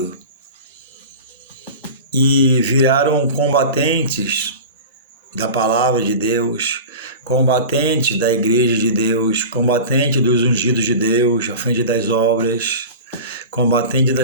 e viraram combatentes da palavra de Deus, combatentes da igreja de Deus, combatentes dos ungidos de Deus, à frente das obras, combatentes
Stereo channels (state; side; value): inverted; both; correlation -0.32